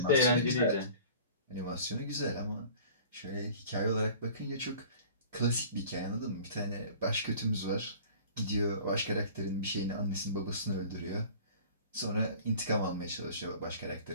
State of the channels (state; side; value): inverted; both; correlation -0.44